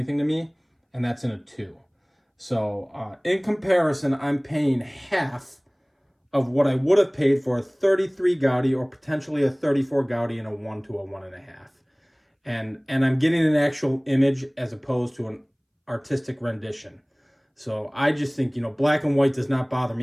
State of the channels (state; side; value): identical; both; correlation 1.00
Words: to me, and that's in a 2. So in comparison, I'm paying half of what I would have paid for a 33 Gaudi or potentially a 34 Gaudi in a 1 to a 1.5. And I'm getting an actual image as opposed to an artistic rendition. So I just think, black and white does not bother